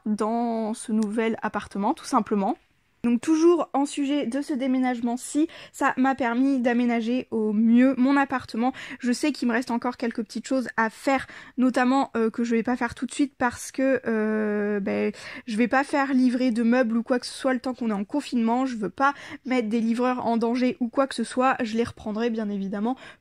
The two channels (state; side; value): identical; both; correlation 1.00